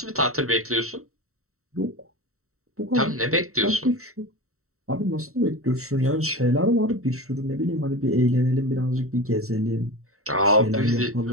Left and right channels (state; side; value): late; left; 0.64 ms